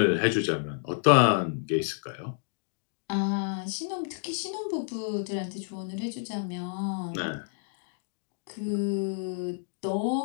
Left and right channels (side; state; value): right; silent; digital silence